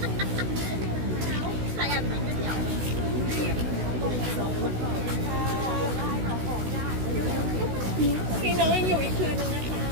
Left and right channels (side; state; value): left; late; 16 ms